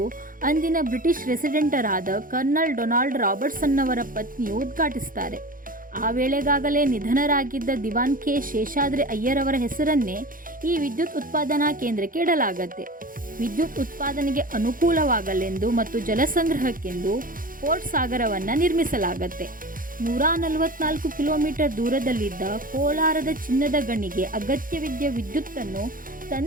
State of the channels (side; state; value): left; late; 0.40 ms